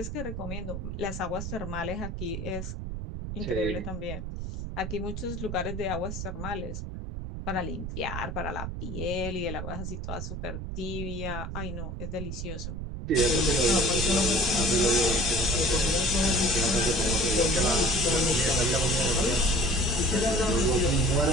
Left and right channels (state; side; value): noise; right; rumble, 6 dB below the sound